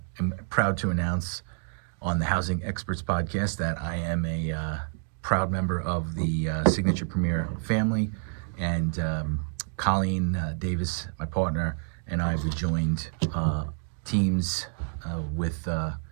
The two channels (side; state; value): left; silent; digital silence